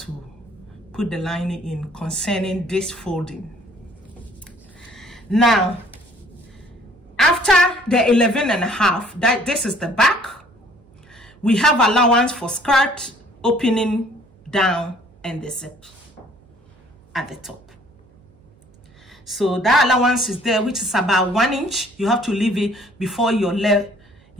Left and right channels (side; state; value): right; noise; hum, 30 dB below the sound